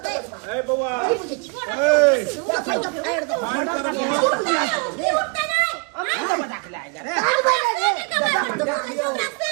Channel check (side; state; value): left; quieter; 36.2 dB